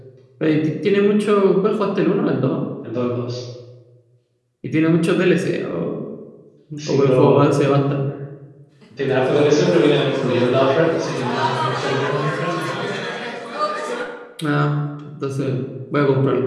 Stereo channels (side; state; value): both; identical; correlation 1.00